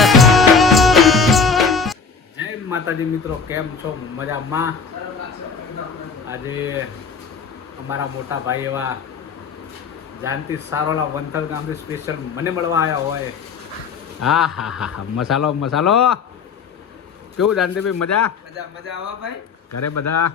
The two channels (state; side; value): quieter; right; 5.4 dB